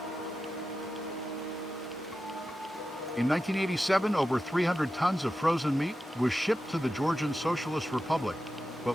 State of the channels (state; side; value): normal; both; correlation 0.92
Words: In 1987, over 300 tons of frozen meat was shipped to the Georgian Socialist Republic,